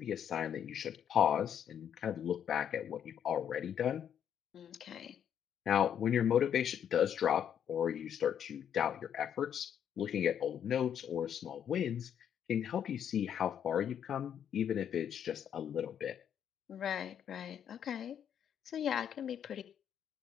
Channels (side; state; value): right; quieter; 9.0 dB